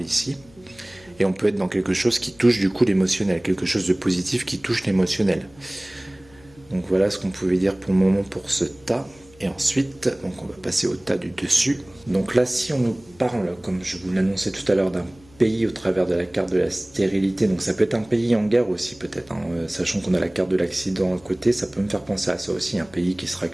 ici. Et on peut être dans quelque chose qui touche du coup l'émotionnel, quelque chose de positif qui touche l'émotionnel. Donc voilà ce qu'on pouvait dire pour le moment pour ce tas. Et ensuite, donc on va passer au tas du dessus. Donc là, si on nous parle, comme je vous l'annonçais tout à l'heure, d'un pays au travers de la carte de la stérilité. Donc ça peut être un pays en guerre aussi peut-être, hein. Sachant qu'on a la carte de l'accident à côté, ça peut me faire penser à ça aussi, un pays qui sera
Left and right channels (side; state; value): left; noise; hum, 26 dB below the sound